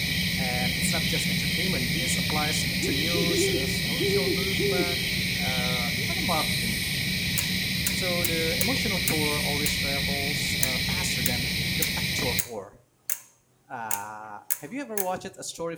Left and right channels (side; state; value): both; identical; correlation 1.00